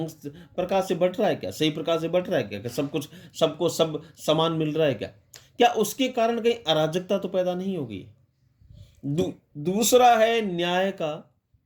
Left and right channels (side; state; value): both; identical; correlation 1.00